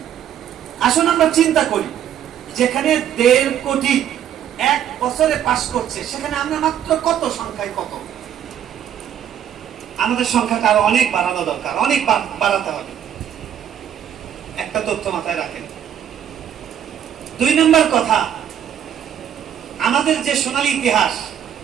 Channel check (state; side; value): quieter; left; 9.8 dB